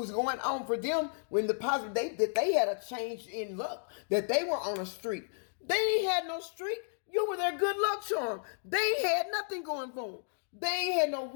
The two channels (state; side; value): silent; right; digital silence